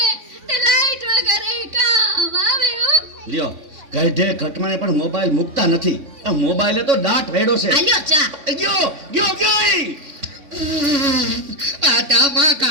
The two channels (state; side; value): late; left; 3.6 ms